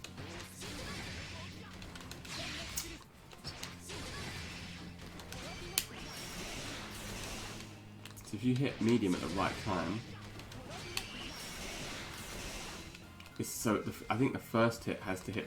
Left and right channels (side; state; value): both; identical; correlation 1.00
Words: So if you hit medium at the right time, it's so I think the first hit has to